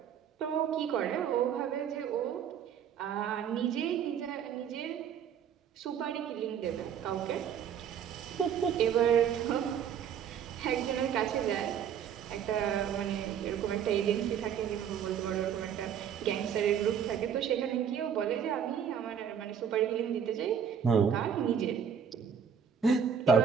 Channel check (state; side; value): quieter; left; 8.1 dB